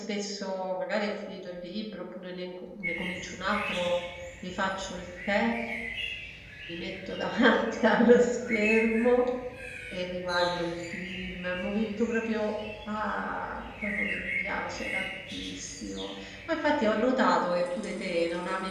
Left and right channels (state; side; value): identical; both; correlation 1.00